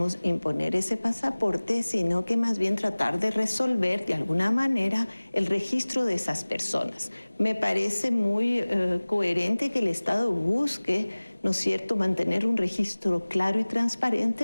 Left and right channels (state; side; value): inverted; both; correlation -1.00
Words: imponer ese pasaporte, sino que más bien tratar de resolver de alguna manera el registro de esas personas. Me parece muy coherente que el Estado busque, ¿no es cierto?, mantener un registro claro y